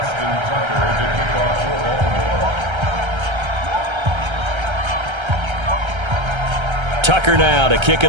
Tucker to kick off for Baltimore. Tucker now to kick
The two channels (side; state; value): left; late; 1.3 ms